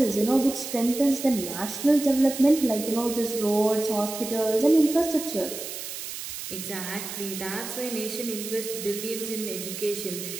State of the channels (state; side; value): noise; right; hiss, 8 dB below the sound